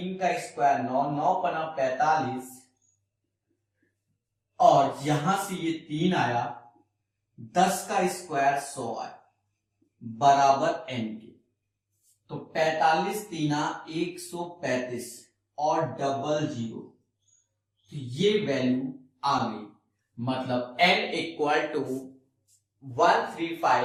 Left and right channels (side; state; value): both; identical; correlation 1.00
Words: का स्क्वायर 9, 9 पना 45, और यहां से ये 3 आया, 10 का स्क्वायर 100 आया बराबर n के। तो 45 तीना 135 और डबल जीरो, तो ये वैल्यू आ गई। मतलब n इक्वल टू